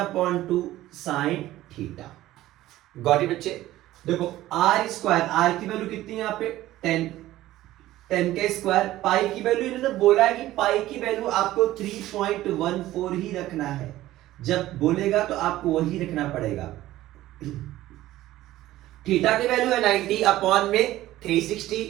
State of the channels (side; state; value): left; quieter; 15.3 dB